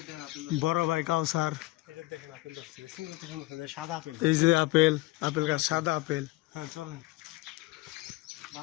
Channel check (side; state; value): right; quieter; 19.5 dB